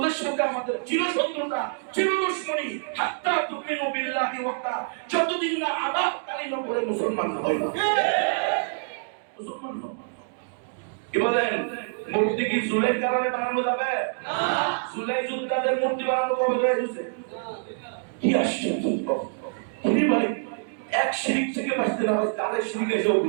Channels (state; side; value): silent; left; digital silence